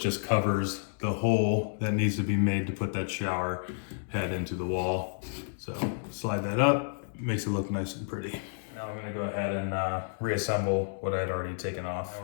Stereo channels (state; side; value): silent; right; digital silence